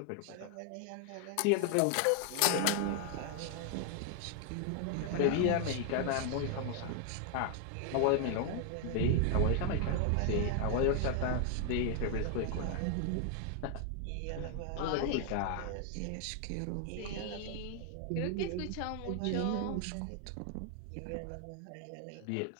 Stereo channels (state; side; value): different; both; correlation 0.00